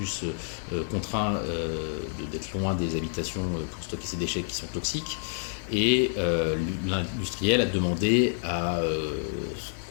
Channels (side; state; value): right; silent; digital silence